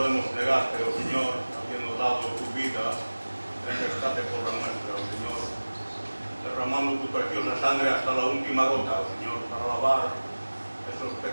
negarte, oh Señor, habiendo dado tu vida en rescate por la nuestra, oh Señor? Derramando tu preciosa sangre hasta la última gota, oh Señor, para lavar esos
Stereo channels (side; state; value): both; inverted; correlation -1.00